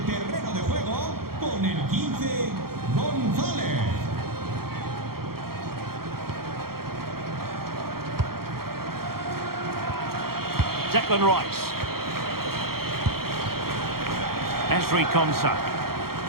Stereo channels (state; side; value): late; left; 0.94 ms